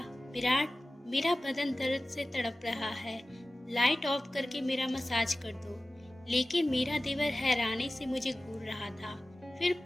विराट, मेरा बदन दर्द से तड़प रहा है, लाइट ऑफ करके मेरा मसाज कर दो। लेकिन मेरा देवर हैरानी से मुझे घूर रहा था। फिर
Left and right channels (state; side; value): normal; both; correlation 0.96